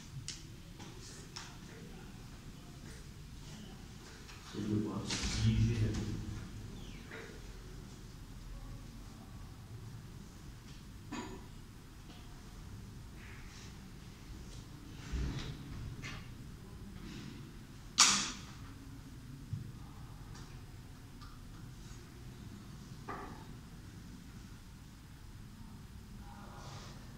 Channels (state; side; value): identical; both; correlation 1.00